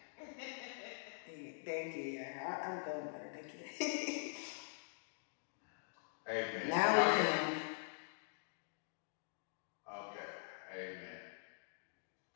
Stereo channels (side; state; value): right; silent; digital silence